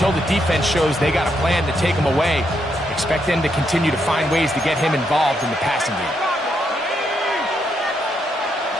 the defense shows they got a plan to take him away, expect them to continue to find ways to get him involved in the passing game.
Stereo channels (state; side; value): normal; both; correlation 0.78